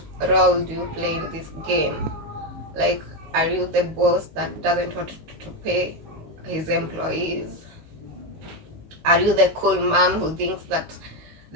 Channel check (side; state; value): left; late; 19 ms